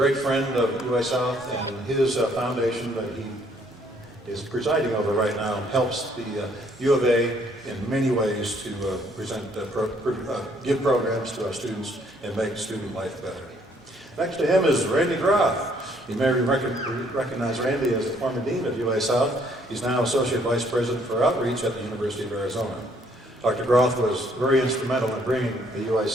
friend of UA South, and his foundation that he is presiding over right now helps the U of A in many ways to give programs to our students and make student life better. Next to him is Randy Groff. You may recognize Randy as the former dean of UA South. He's now associate vice president for outreach at the University of Arizona. Dr. Groff was very instrumental in bringing the UA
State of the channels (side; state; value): both; normal; correlation 0.65